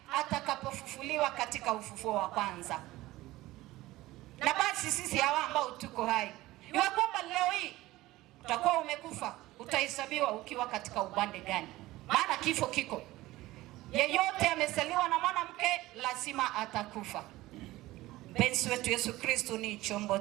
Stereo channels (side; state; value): left; quieter; 17.8 dB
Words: atakapofufuliwa katika ufufuo wa kwanza. Na basi sisi hawa ambao tuko hai, iwe kwamba leo hii utakuwa umekufa, utahesabiwa ukiwa katika upande gani, maana kifo kiko. Yeyote amezaliwa na mwanamke lazima atakufa. Mpenzi wetu Yesu Kristo ni chombo